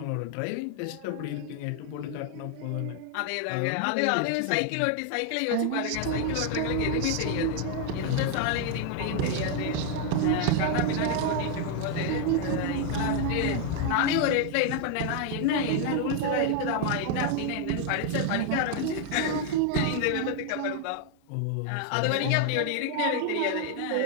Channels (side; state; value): both; different; correlation 0.00